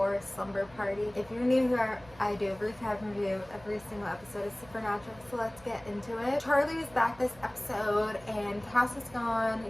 Slumber Party. If you're new here, I do a recap review every single episode of Supernatural, so let's get into it. Charlie is back this episode and Cass is gone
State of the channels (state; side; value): noise; right; hum, 23 dB below the sound